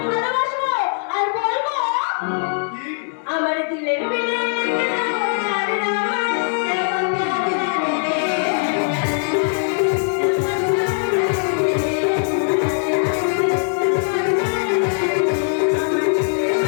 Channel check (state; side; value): silent; right; 64 dB below the other